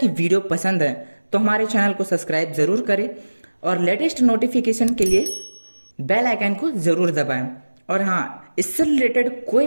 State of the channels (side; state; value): both; inverted; correlation -1.00